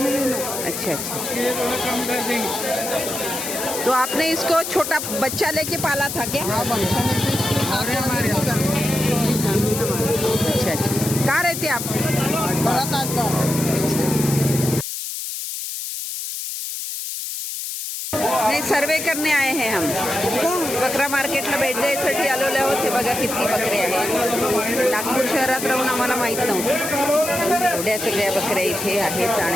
में लेना। अच्छा अच्छा, ये थोड़ा कम कर देंगे। तो आपने इसको छोटा बच्चा लेके पाला था क्या? हाँ, बच्चा लेके हमारे अच्छा अच्छा, कहाँ रहते आप? बड़ा ताजमहल। नाही, सर्वे करणे आहे हे हम बकरा मार्केटला भेट द्यायसाठी आलेले आहोत। हे बघा किती बकरे आहेत। नागपूर शहरात राहून आम्हाला माहीत नव्हतं एवढ्या सगळ्या बकऱ्या इथे आहेत।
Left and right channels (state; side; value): noise; left; hiss, 5 dB below the sound